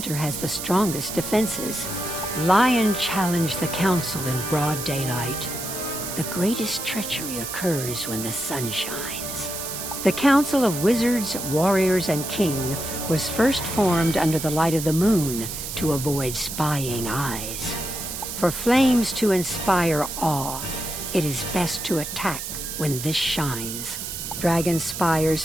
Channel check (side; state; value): right; noise; hiss, 6 dB below the sound